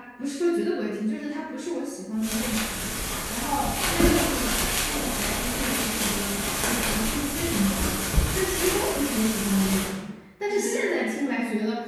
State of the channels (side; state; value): both; identical; correlation 1.00